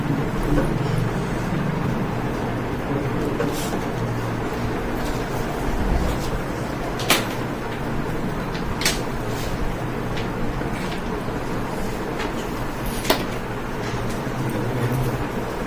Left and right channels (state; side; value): identical; both; correlation 1.00